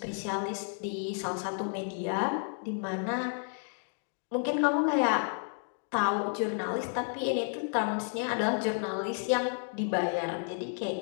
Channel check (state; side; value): silent; right; 57 dB below the other